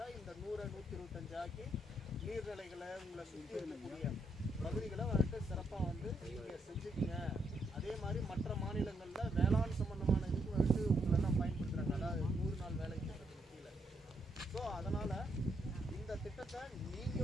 இந்த 100-125 ஆக்கி நீர்நிலைகளை உங்களை சுற்றி இருக்கக்கூடிய பகுதிகளை வந்துட்டு சிறப்பாக வந்து நீங்கள் செஞ்சுக்கங்க. அதே மாதிரி மற்ற மாநிலங்களில் வேளாண் சம்பந்தமான இதுக்கு வந்துட்டு உங்களெல்லாம் பயன்படுத்துகிறாங்க, அதாவது 100 நாள் வேலை திட்டத்துக்கு கீழே. ஸோ அதனால் இந்த திட்டத்தை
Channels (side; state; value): both; normal; correlation 0.77